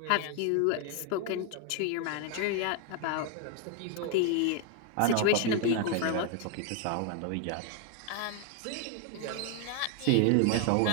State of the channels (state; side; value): different; both; correlation 0.00